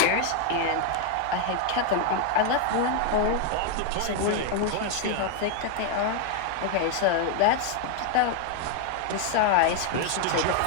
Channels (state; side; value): different; both; correlation 0.00